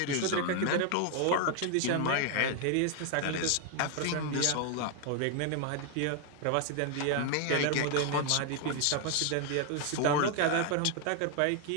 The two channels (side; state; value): both; different; correlation 0.00